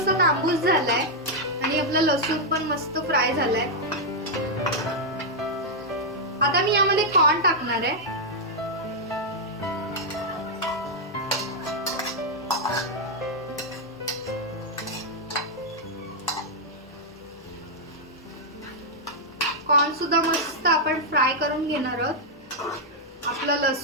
तांबूस झालाय आणि आपला लसूण पण मस्त फ्राय झालाय. आता मी यामध्ये कॉर्न टाकणार आहे. कॉर्न सुद्धा मस्त आपण फ्राय करून घेणार आहोत. आपला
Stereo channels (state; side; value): normal; both; correlation -0.04